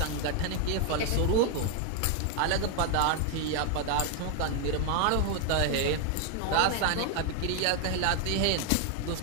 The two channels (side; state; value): both; different; correlation 0.01